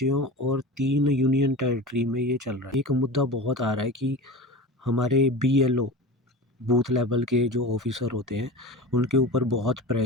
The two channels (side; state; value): both; normal; correlation 0.31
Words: और 3 यूनियन टेरिटरी में ये चल रहा है। एक मुद्दा बहुत आ रहा है कि हमारे बीएलओ बूथ लेवल के जो ऑफिसर होते हैं उनके ऊपर बहुत